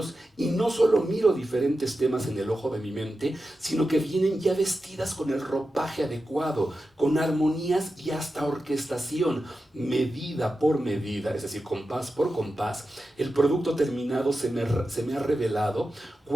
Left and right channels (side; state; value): both; normal; correlation 0.91